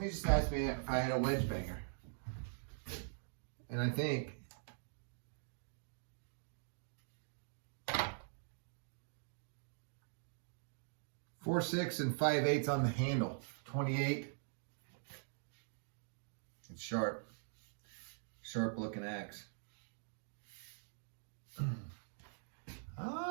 just asked me if I had a wedge banger. And I think 4/6 and 5/8 on the handle. 28. It's sharp. Sharp looking axe.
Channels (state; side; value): silent; left; digital silence